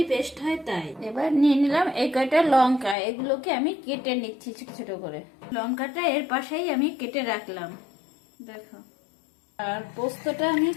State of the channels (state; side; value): drops out; right; at 3.0 s